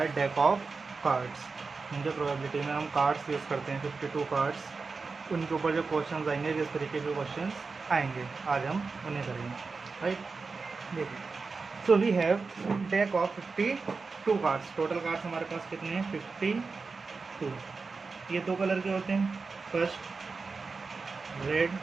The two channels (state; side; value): quieter; left; 4.4 dB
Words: डेक ऑफ कार्ड्स। जो प्रोबेबिलिटी में हम कार्ड्स यूज़ करते हैं 52 कार्ड्स, उनके ऊपर जो क्वेश्चंस आएंगे, किस तरीके के क्वेश्चंस आएंगे, आज हम उन्हें करेंगे, राइट। देखिए, so we have deck of 52 cards. Total cards हमारे पास कितने हैं? 52। ये दो कलर के होते हैं। फर्स्ट रेड,